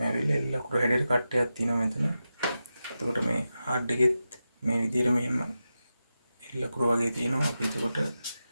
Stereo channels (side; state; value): both; inverted; correlation -0.91